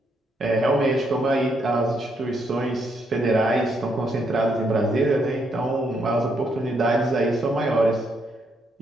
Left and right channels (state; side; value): normal; both; correlation 0.75